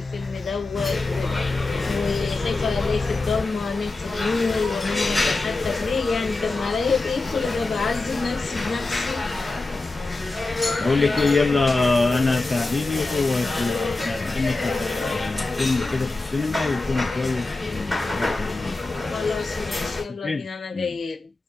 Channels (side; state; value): right; quieter; 3.3 dB